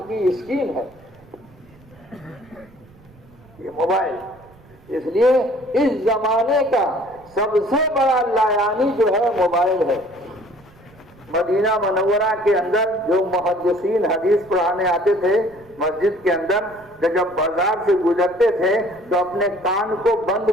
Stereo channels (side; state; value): right; noise; rumble, 26 dB below the sound